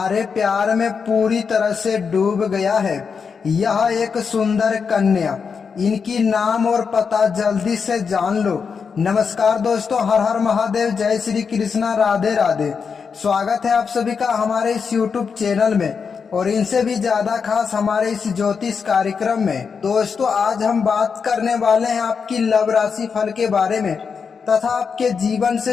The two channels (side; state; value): right; quieter; 5.9 dB